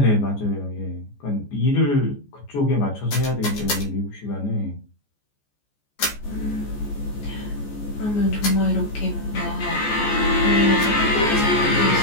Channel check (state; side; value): late; right; 14 ms